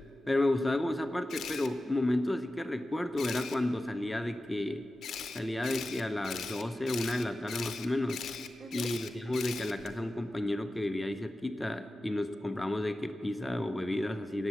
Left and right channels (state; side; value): normal; both; correlation 0.94